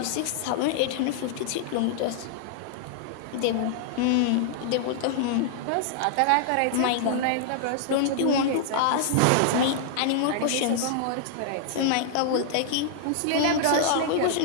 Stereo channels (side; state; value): both; different; correlation -0.01